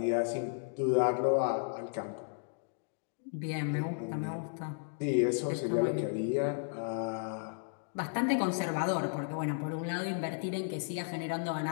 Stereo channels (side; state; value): right; silent; digital silence